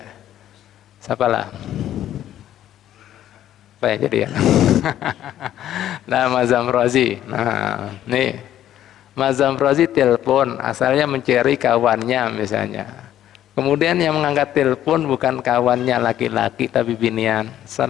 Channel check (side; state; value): right; quieter; 11.9 dB